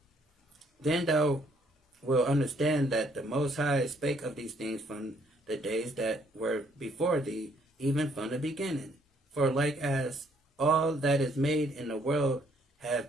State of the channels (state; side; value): normal; both; correlation 0.67